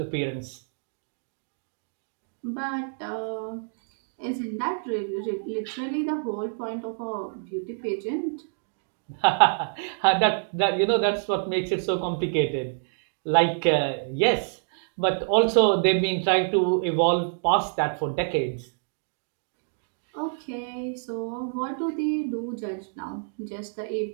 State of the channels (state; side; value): silent; left; digital silence